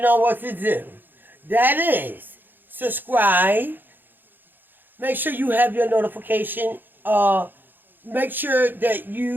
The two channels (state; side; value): late; left; 0.092 ms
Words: what to do. That is, subscribe. Make sure you have your notification. Make sure that